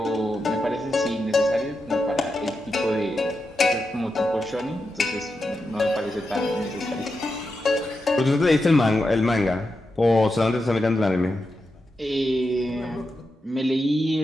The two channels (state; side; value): normal; both; correlation 0.88